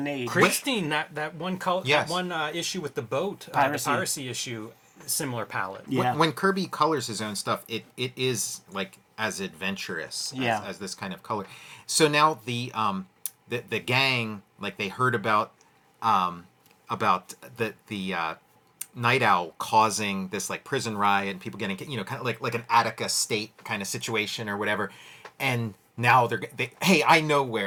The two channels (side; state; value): both; identical; correlation 1.00